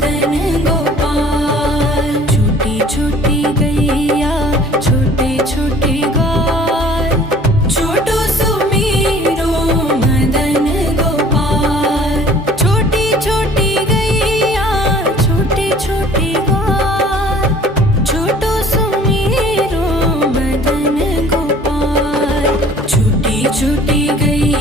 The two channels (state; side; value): noise; left; hum, 25 dB below the sound